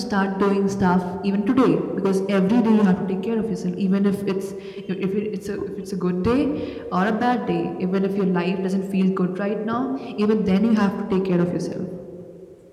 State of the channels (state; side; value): identical; both; correlation 1.00